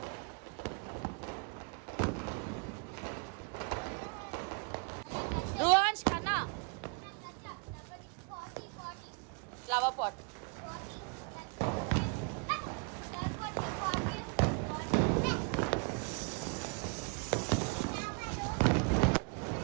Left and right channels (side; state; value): left; quieter; 35.5 dB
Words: రువాన్స్ కన్నా ఫ్లవర్ పాట్.